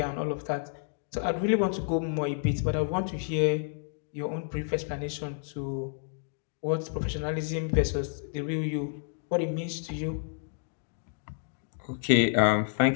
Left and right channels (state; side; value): silent; right; digital silence